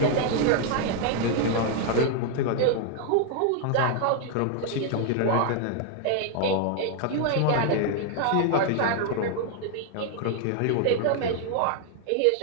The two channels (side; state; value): both; different; correlation 0.00